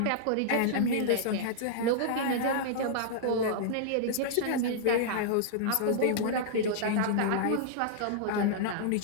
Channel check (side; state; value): both; different; correlation -0.02